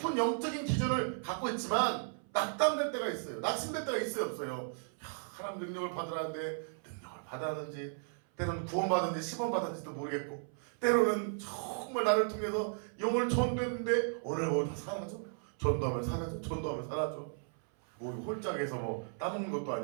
영적인 기준을 갖고 있지만 낙담될 때가 있어요. 낙심될 때가 있어요, 없어요? 하나님 능력을 받으라는데 능력을 받았는지 때로는 구원받았는지 시범받았는지도 모르겠고 때로는 정말 나를 통해서 영을 전도했는데 오늘 뭐 다 사라져. 전도하면 사라져. 뭐 홀짝에서 뭐 따먹는 것도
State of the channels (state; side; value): silent; left; 54 dB below the other